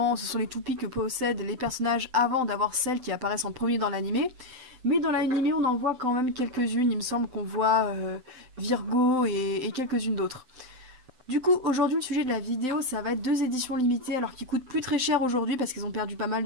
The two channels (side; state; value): left; late; 7.8 ms